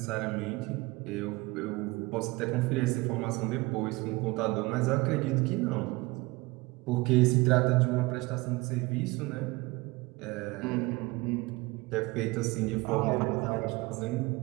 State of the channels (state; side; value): quieter; left; 22.9 dB